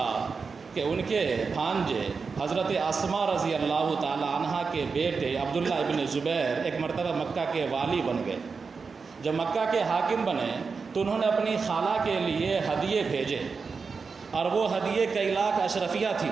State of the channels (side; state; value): left; quieter; 5.0 dB